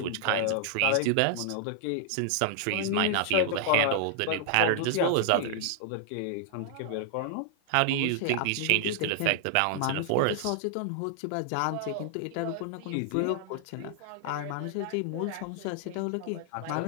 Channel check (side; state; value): both; different; correlation -0.01